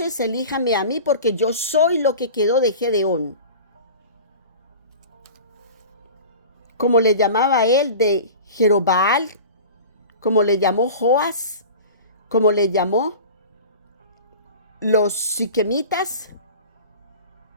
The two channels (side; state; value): both; inverted; correlation -0.37